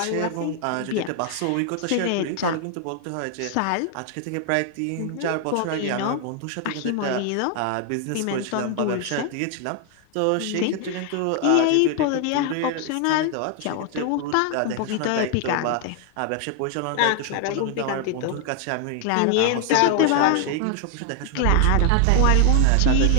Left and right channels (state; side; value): different; both; correlation 0.00